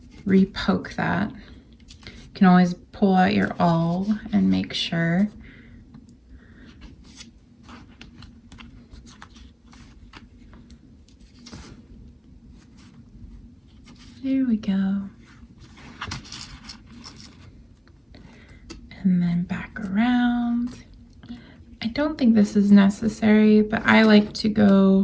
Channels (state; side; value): identical; both; correlation 1.00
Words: re-poke that. You can always pull out your awl and make sure. There we go. And then back around. I don't think this is necessary, but I like to